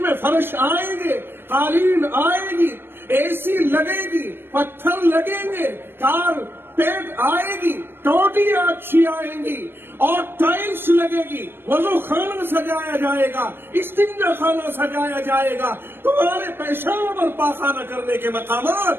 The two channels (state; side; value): late; left; 0.10 ms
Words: میں فرش آئیں گے, قالین آئے گی, اے سی لگے گی, پتھر لگیں گے, کارپیٹ آئے گی, ٹوٹیاں اچھی آئیں گی اور ٹائلز لگے گی, وضو خانہ سجایا جائے گا, استنجا خانہ سجایا جائے گا. تمہارے پیشاب اور پاخانہ کرنے کے